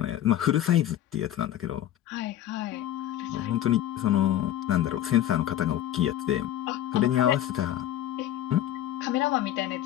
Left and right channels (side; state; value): right; quieter; 12.5 dB